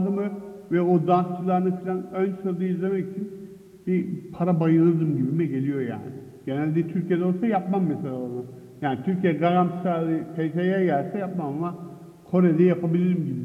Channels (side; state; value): both; identical; correlation 1.00